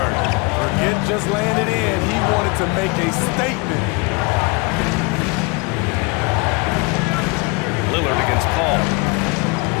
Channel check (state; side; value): quieter; right; 29.1 dB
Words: Forget just landed in. He wanted to make a statement. Lillard against Paul.